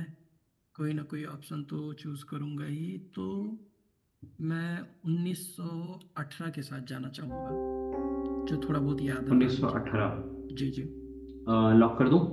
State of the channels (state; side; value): identical; both; correlation 1.00